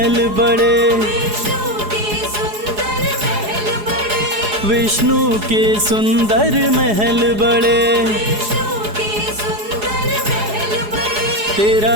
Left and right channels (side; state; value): left; late; 4.8 ms